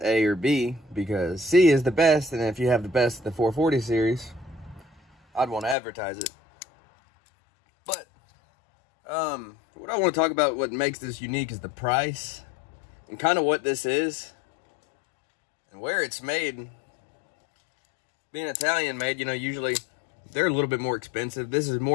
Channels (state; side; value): drops out; right; at 5.8 s